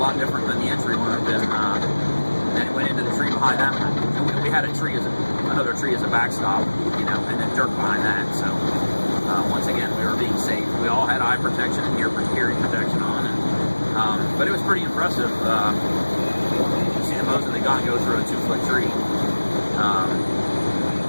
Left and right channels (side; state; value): both; inverted; correlation -1.00